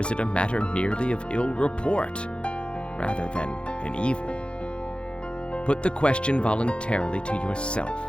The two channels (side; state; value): right; late; 0.056 ms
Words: it a matter merely of ill report, rather than an evil? Put the question voluntarily to yourself.